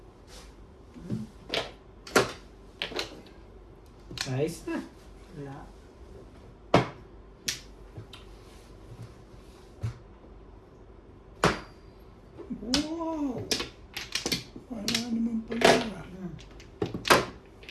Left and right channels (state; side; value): identical; both; correlation 1.00